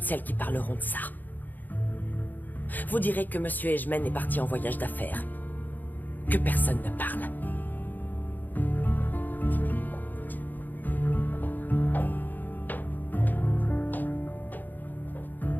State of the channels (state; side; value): late; right; 0.087 ms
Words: celles qui parleront de ça. Vous direz que Monsieur Ejmen est parti en voyage d'affaires. Que personne ne parle.